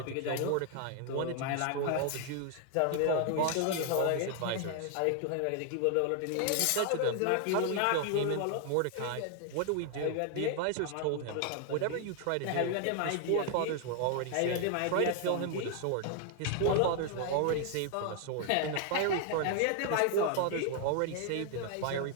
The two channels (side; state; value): both; different; correlation 0.00